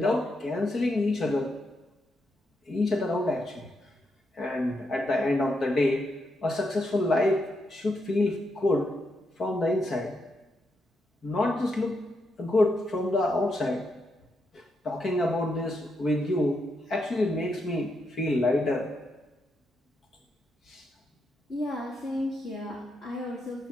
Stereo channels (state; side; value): normal; both; correlation 0.82